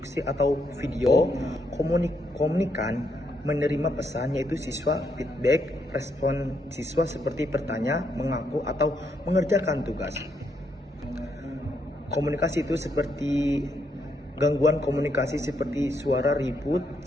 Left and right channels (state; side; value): normal; both; correlation 0.77